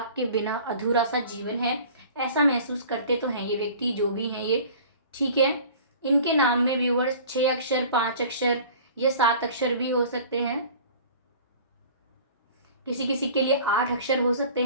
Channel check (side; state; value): both; inverted; correlation -0.44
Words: बिना अधूरा सा जीवन है। ऐसा महसूस करते तो हैं ये व्यक्ति, जो भी हैं ये, ठीक है। इनके नाम में व्यूअर्स 6 अक्षर, 5 अक्षर या 7 अक्षर भी हो सकते हैं। किसी किसी के लिए 8 अक्षर हो सकते